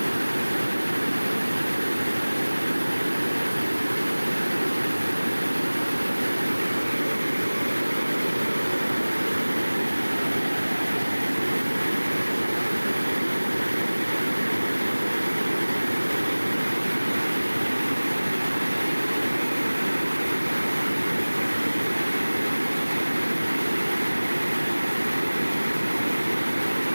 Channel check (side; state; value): both; inverted; correlation -1.00